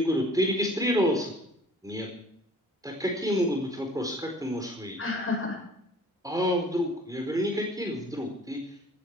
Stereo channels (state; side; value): normal; both; correlation 0.51